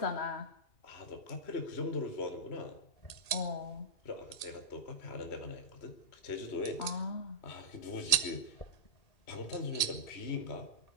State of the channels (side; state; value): right; late; 1.8 ms